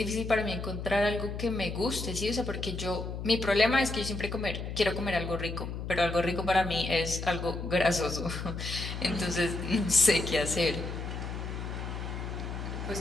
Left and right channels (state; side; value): noise; left; hum, 6 dB below the sound